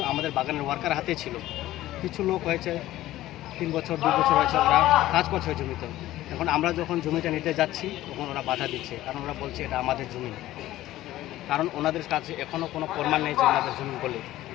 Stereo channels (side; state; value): right; quieter; 15.2 dB